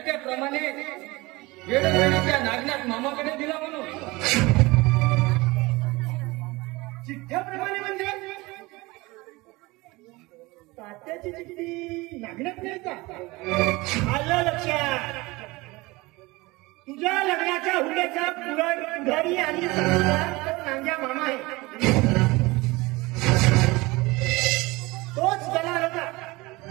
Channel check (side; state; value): left; quieter; 22.4 dB